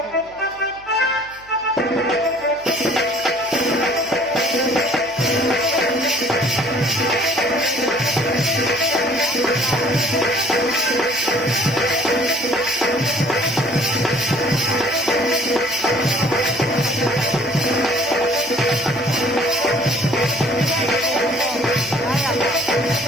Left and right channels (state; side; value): noise; right; hum, 26 dB below the sound